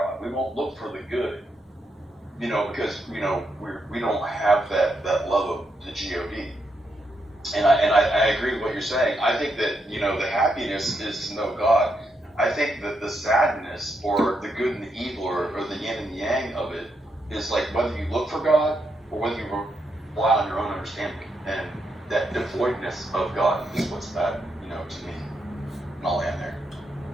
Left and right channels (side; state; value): both; normal; correlation 0.80